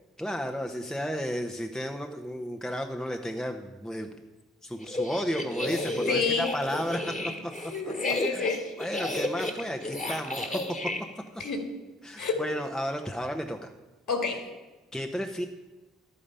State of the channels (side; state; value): both; normal; correlation 0.64